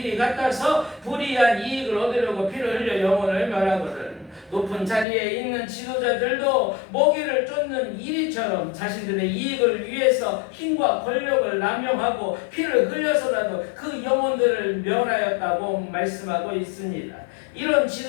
같아서 불의한 이익을 얻으려고 피를 흘려 영혼을 멸하거든. 높은 자리에 있는 지도자들도 먹이를 쫓는 이리처럼 자신들의 이익을 위해서 힘과 권력을 남용하고 피를 흘려서라도 그 영혼들을 멸하였다고 말씀하고 있습니다. 이런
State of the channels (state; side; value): drops out; right; at 5.1 s